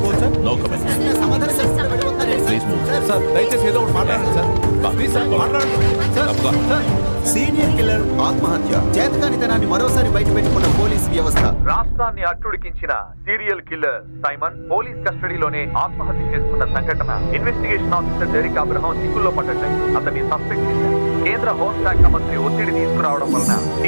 No comment. Please move. Sir దయచేసి ఏదో ఒకటి మాట్లాడండి సార్. ప్లీజ్ సార్ మాట్లాడండి సార్. సార్ సీనియర్ కిల్లర్ ఆత్మహత్య, చేతకానితనాన్ని మరోసారి బయట పెట్టుకున్న పోలీస్ వ్యవస్థ. రాష్ట్రాన్ని అట్టుడికించిన సీరియల్ కిల్లర్ సైమన్ పోలీస్ కస్టడీలోనే ఆత్మహత్య చేసుకున్న సంఘటన ఇన్వెస్టిగేషన్ ఆఫీసర్ డెరిక్ అబ్రహం చిక్కుల్లో పడ్డాయి. అతన్ని సస్పెక్ట్ చేశారు. కేంద్ర హోంశాఖ మంత్రి ఒత్తిడి తీసుకురావడం వలన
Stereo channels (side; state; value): both; inverted; correlation -1.00